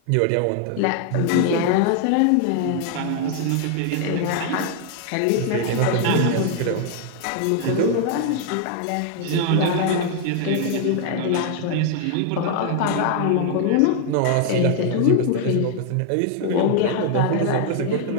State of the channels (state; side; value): different; both; correlation 0.00